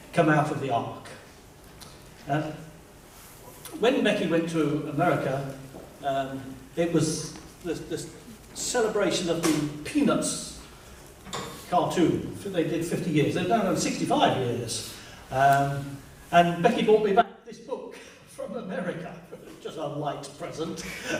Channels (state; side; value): identical; both; correlation 1.00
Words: "Come out of the ark." When Becky went to America, it was this celebration of the Peanuts cartoon. They did 50 years. They've now done 65 years. And Becky brought me back this book from America. Just a light present.